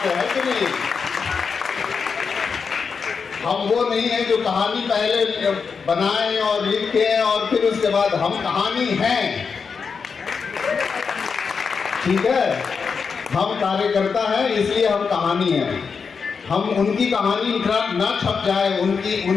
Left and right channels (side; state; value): right; quieter; 5.6 dB